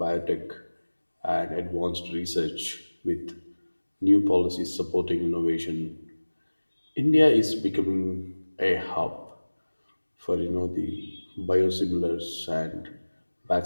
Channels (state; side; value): inverted; both; correlation -1.00